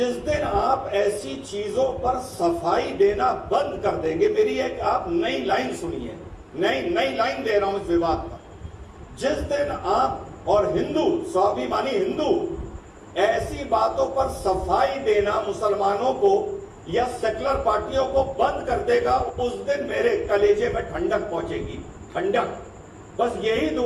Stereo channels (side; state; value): both; identical; correlation 1.00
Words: दिन आप ऐसी चीजों पर सफाई देना बंद कर देंगे, मेरी एक आप नई लाइन सुनिए, नई लाइन दे रहा हूं इस विवाद पर। जिस दिन आप और हिंदू, स्वाभिमानी हिंदू ऐसी बातों पर सफाई देना मुसलमानों को या सेकुलर पार्टियों को बंद कर देगा, उस दिन मेरे कलेजे में ठंडक पहुंचेगी, ठंडक। बस यही